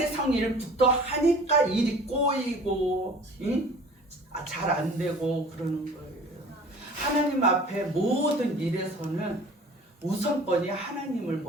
일부터 하니까 일이 꼬이고 잘 안 되고 그러는 거예요. 하나님 앞에 모든 일에서는 우선권이 하나님을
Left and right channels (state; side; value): normal; both; correlation 0.46